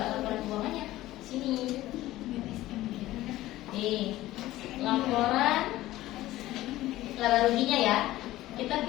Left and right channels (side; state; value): right; quieter; 16.0 dB